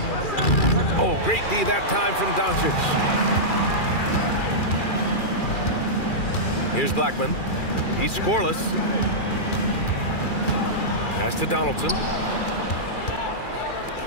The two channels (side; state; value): right; late; 2.4 ms